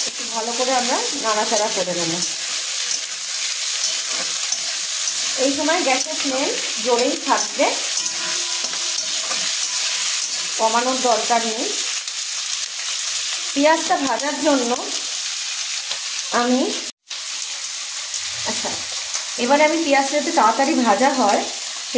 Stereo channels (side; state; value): both; identical; correlation 1.00